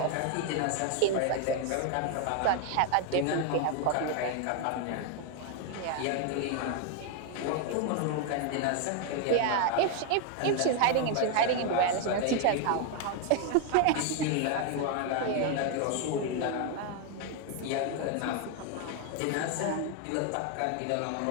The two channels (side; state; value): both; different; correlation 0.01